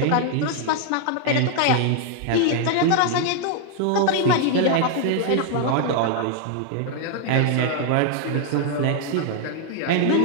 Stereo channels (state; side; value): different; both; correlation 0.00